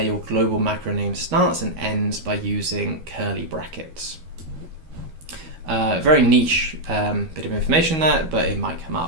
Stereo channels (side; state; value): left; late; 13 ms